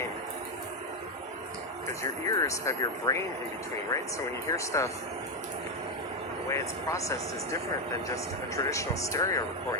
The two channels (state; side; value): normal; both; correlation 0.06